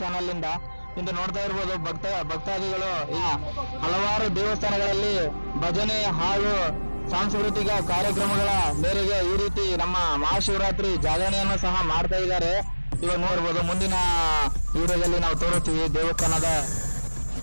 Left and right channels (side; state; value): both; inverted; correlation -1.00